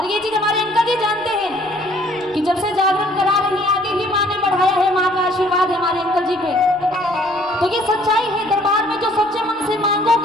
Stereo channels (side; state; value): right; noise; rumble, 29 dB below the sound